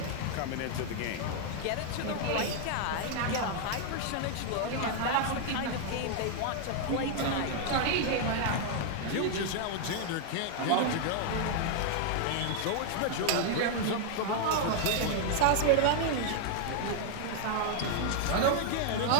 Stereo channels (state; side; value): different; both; correlation 0.00